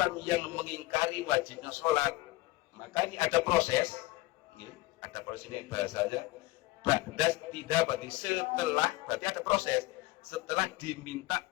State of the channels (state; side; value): quieter; right; 19.7 dB